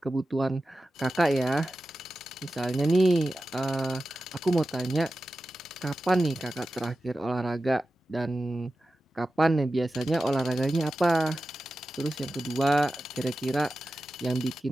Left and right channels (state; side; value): normal; both; correlation 0.93